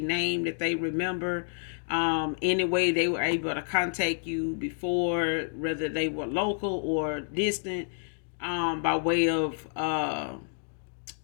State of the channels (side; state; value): right; silent; digital silence